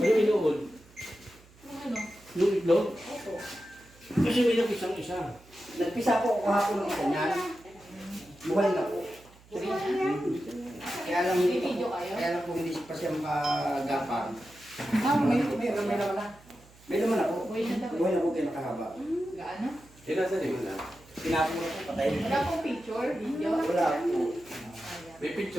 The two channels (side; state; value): right; noise; hum, 26 dB below the sound